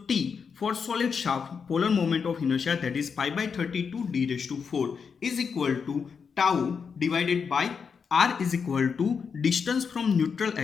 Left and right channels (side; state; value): right; quieter; 6.0 dB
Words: T for solid shaft polar moment of inertia, that is pi by 32 d raised to 4 is equal to tau divided by R is equal to distance from neutral